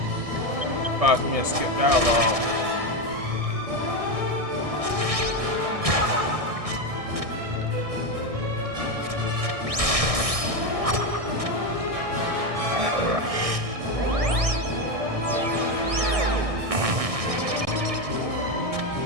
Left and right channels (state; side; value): late; left; 1.6 ms